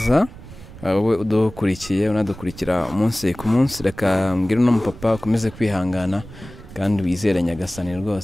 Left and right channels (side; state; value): right; noise; rumble, 17 dB below the sound